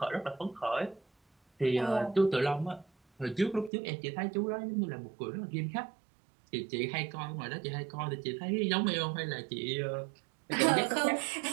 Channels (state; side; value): drops out; left; at 3.7 s